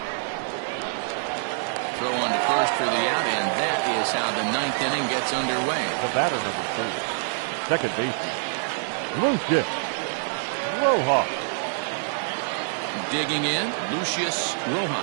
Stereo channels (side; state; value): left; silent; digital silence